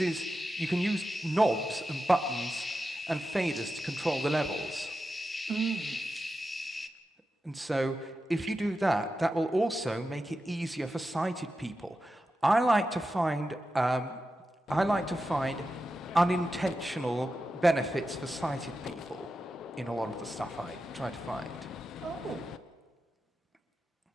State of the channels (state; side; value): normal; both; correlation 0.90